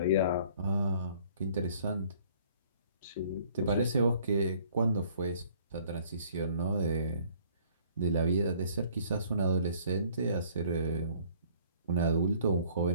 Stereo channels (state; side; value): inverted; both; correlation -0.57